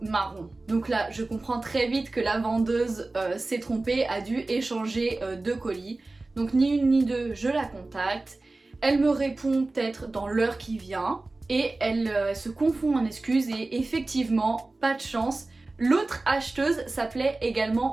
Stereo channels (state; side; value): quieter; left; 3.2 dB